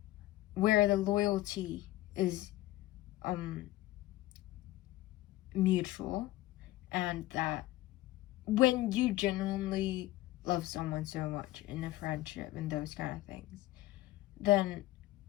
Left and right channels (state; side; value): quieter; right; 16.8 dB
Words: where the loyalty is mutual, and that when you genuinely love someone so much in a friendship and those kind of things, then